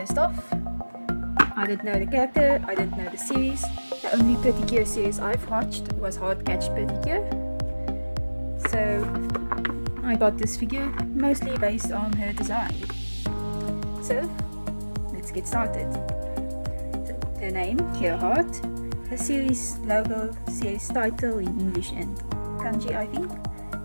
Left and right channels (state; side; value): inverted; both; correlation -1.00